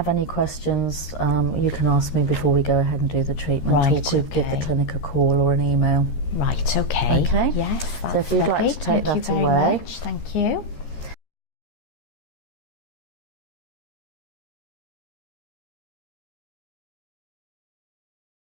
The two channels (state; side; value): late; right; 13 ms